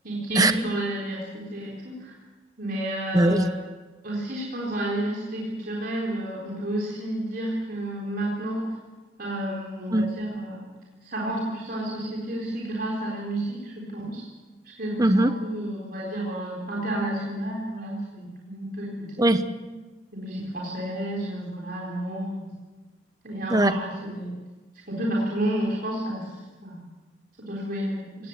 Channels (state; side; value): normal; both; correlation 0.66